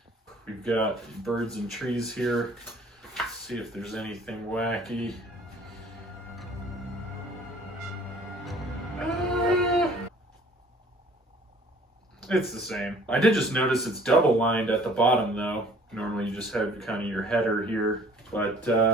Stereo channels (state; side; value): normal; both; correlation 0.53